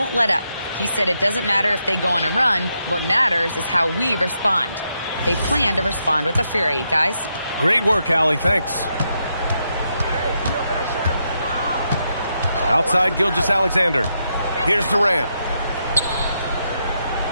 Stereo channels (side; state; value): both; inverted; correlation -0.81